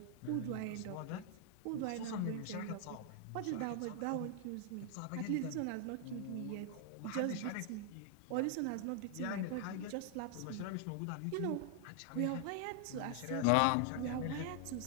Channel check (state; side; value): different; both; correlation 0.00